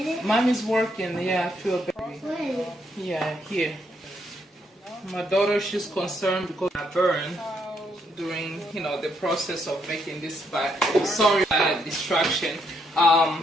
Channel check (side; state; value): both; normal; correlation 0.75